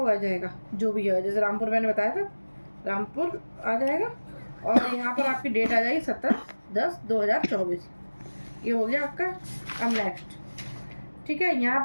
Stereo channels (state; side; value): inverted; both; correlation -1.00